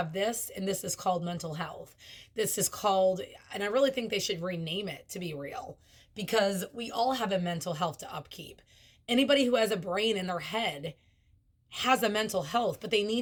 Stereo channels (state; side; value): identical; both; correlation 1.00